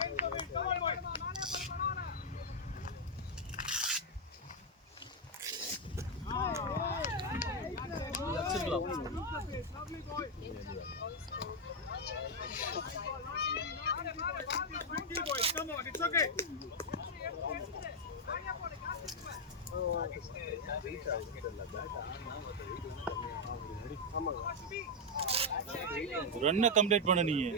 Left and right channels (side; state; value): both; normal; correlation 0.00